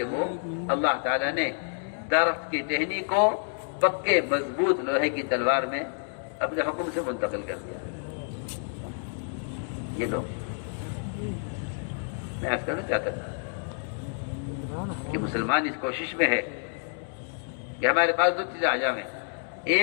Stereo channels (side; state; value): right; silent; digital silence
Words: وہ اللہ تعالیٰ نے درخت کی ٹہنی کو پکے مضبوط لوہے کی تلوار میں اپنے حکم سے منتقل کر دیا۔ یہ لو، میں عرض کرنا چاہتا تھا کہ مسلمان اس کوشش میں ہے کہ ہمارے پاس دو چیزیں آ جائیں،